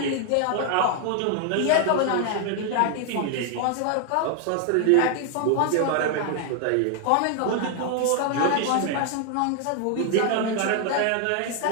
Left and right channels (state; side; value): different; both; correlation 0.00